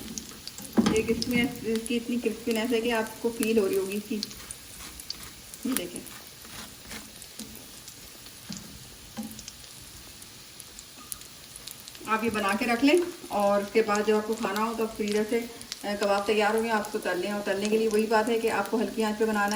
ये इसकी इतनी क्रिस्पीनेस है कि आपको फील हो रही होगी इसकी। ये देखें, आप ये बना के रख लें और उसके बाद जब आपको खाना हो तो फ्रीजर से कबाब तैयार हो गए, आप उसको तल लें। और तलने के लिए वही बात है कि आपको हल्की आंच पे बनाना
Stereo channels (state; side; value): identical; both; correlation 1.00